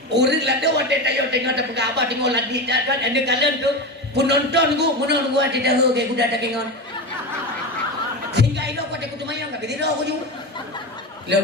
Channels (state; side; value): normal; both; correlation 0.21